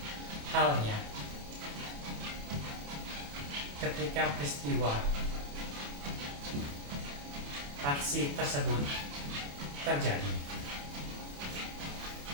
halnya ketika peristiwa aksi tersebut terjadi.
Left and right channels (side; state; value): left; late; 28 ms